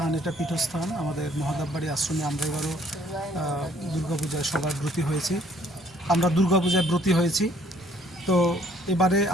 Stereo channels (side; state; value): both; normal; correlation 0.62